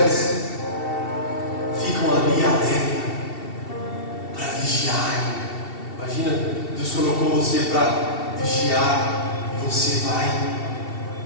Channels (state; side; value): late; right; 2.7 ms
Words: ficam ali alerta para vigiar. Imagina, Deus colocou você para vigiar e você vai